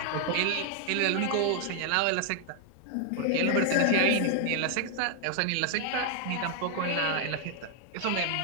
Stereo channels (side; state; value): both; different; correlation 0.00